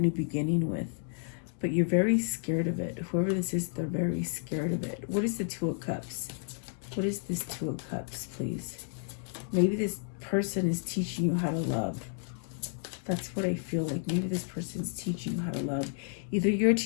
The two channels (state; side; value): silent; right; 57 dB below the other